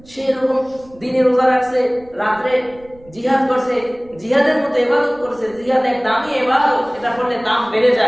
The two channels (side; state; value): right; noise; rumble, 25 dB below the sound